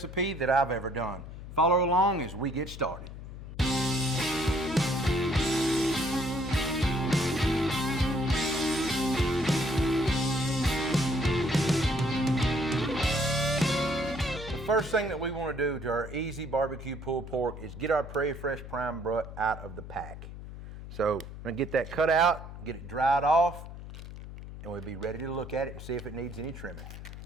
that I've ever done. Follow along as we get started. The first thing that we want to do to our easy barbecue pulled pork is get our Prairie Fresh prime butt out of the pack. So I'm going to get that cut out, get it dried off, and we'll be ready to look at it and see if it needs any trimming.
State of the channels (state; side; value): noise; left; hum, 12 dB below the sound